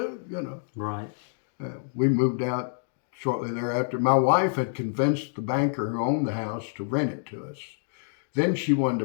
Right. We moved out shortly thereafter. My wife had convinced the banker who owned the house to rent it to us. Then she wanted to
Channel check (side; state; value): right; silent; digital silence